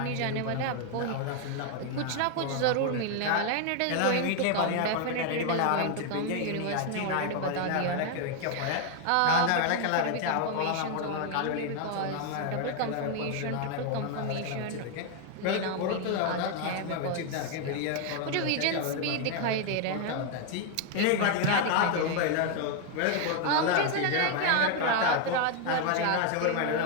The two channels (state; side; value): different; both; correlation 0.01